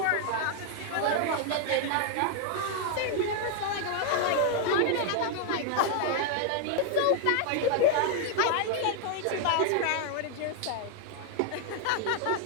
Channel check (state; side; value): different; both; correlation 0.00